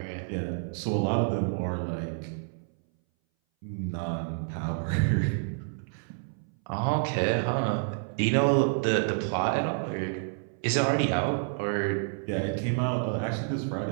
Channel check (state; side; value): silent; left; 59 dB below the other